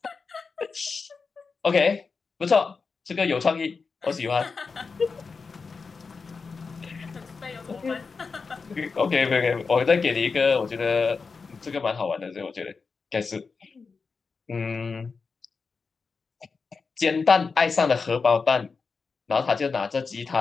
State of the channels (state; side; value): quieter; right; 4.8 dB